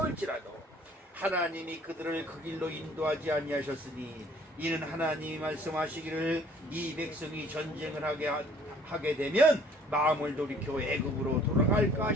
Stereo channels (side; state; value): both; normal; correlation 0.56